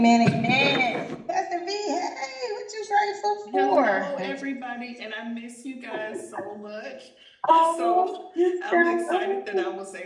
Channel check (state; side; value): identical; both; correlation 1.00